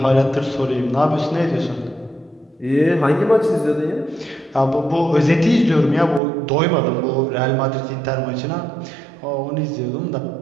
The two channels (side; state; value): left; drops out; at 6.2 s